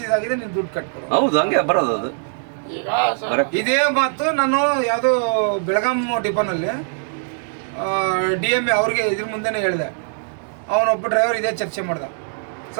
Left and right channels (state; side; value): silent; left; digital silence